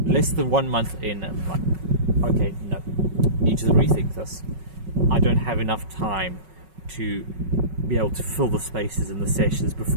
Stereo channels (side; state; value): left; late; 5.4 ms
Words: less than 1 month in, I'm like, okay, no, need to rethink this. I don't have enough time to be able to fill the spaces in the sessions